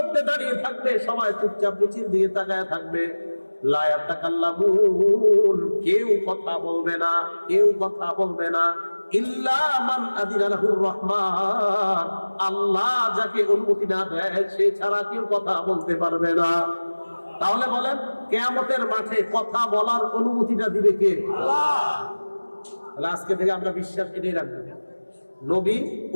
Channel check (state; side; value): inverted; both; correlation -1.00